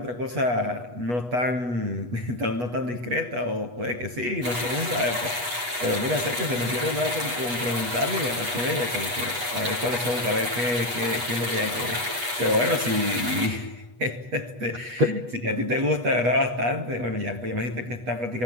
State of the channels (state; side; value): late; left; 8.3 ms